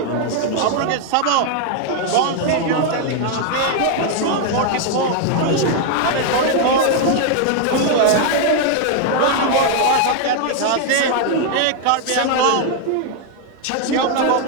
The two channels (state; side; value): different; both; correlation 0.01